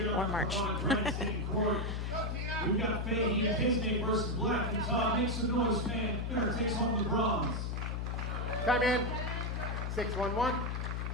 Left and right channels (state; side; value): noise; left; hum, 2 dB below the sound